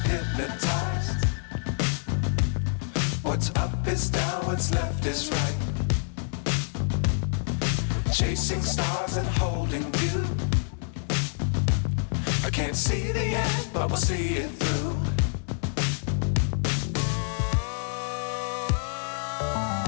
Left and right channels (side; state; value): right; silent; 60 dB below the other